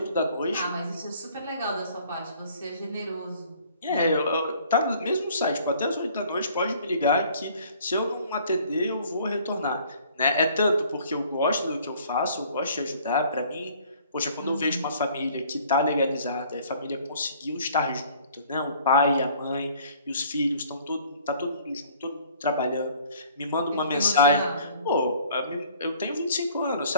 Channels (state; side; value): inverted; both; correlation -0.55